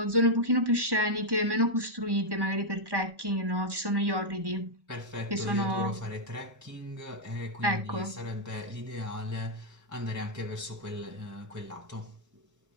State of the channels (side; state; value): left; late; 1.1 ms